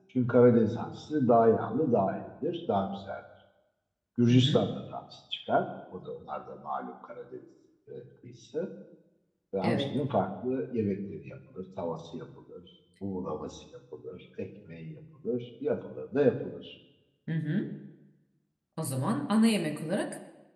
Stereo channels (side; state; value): both; identical; correlation 1.00